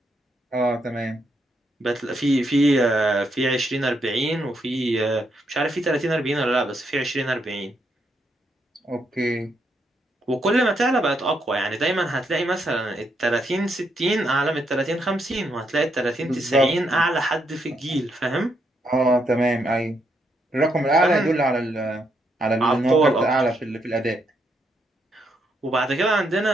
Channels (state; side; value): normal; both; correlation 0.78